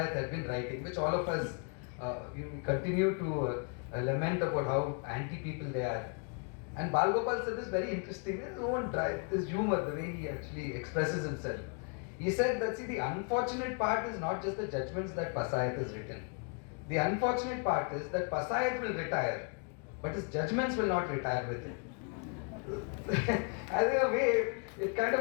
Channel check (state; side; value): quieter; right; 38.0 dB